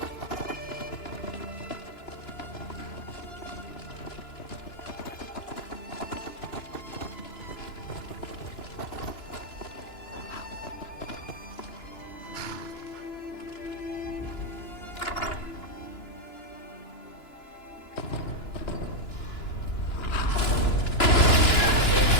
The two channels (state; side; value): late; right; 2.9 ms